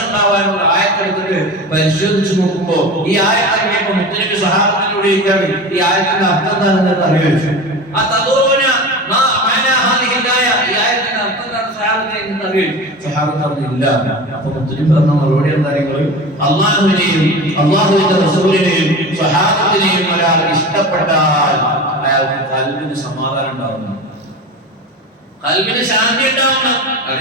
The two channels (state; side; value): normal; both; correlation 0.31